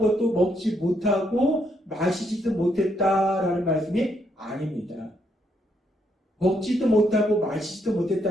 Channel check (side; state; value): both; normal; correlation 0.75